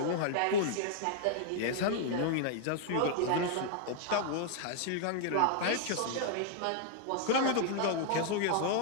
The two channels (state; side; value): different; both; correlation -0.01